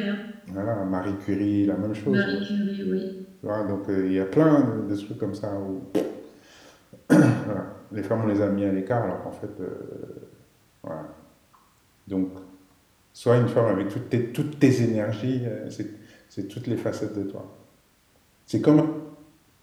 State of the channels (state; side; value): identical; both; correlation 1.00